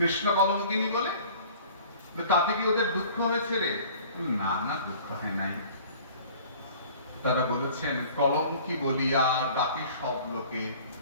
কলঙ্কিনী বলে। তাতে কি ওদের দুঃখ হয়েছে রে? না না, দুঃখ হয় নাই। তারা বলেছেন কলঙ্কি বলিয়া ডাকে সব লোকে,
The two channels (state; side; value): inverted; both; correlation -0.48